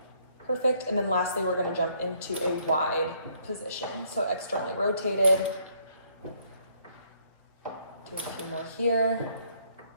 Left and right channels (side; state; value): both; inverted; correlation -0.67